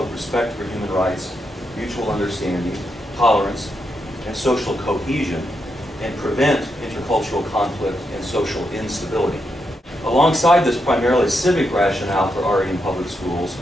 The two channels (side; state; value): both; normal; correlation 0.83